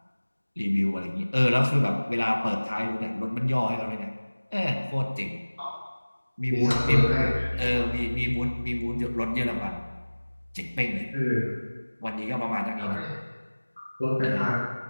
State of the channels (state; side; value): inverted; both; correlation -1.00